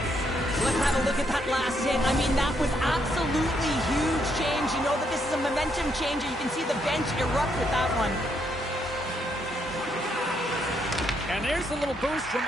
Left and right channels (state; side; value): normal; both; correlation 0.75